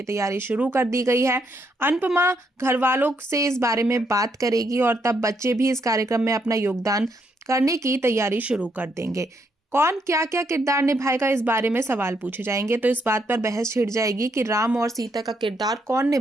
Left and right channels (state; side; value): normal; both; correlation 0.75